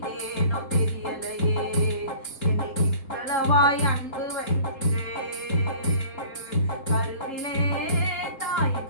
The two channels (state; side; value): late; right; 3.7 ms